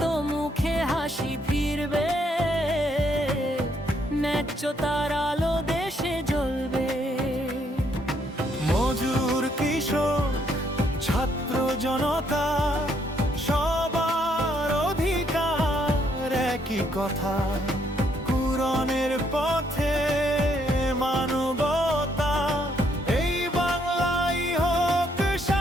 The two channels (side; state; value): both; normal; correlation 0.71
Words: মুখে হাসি ফিরবে, ন্যায্যতার আলো দেশে জ্বলবে। মজুর, কৃষক, ছাত্র জনতা সবার অধিকার একই কথা। কুরআনের পথে মানবতা, এই বাংলাই হোক